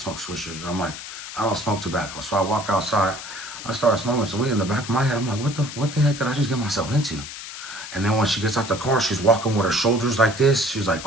swishers. I'm like, I don't smoke tobacco. So I walked outside. I started smoking some weed in the back of my head. I'm like, what the heck did I just get myself into? And then when she gets out the car, she's walking with her shoulders like this. She's like,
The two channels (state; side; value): noise; left; hiss, 11 dB below the sound